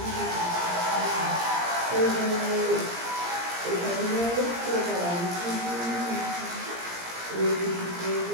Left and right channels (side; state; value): left; late; 17 ms